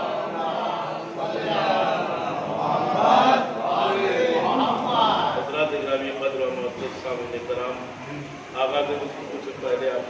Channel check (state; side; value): identical; both; correlation 1.00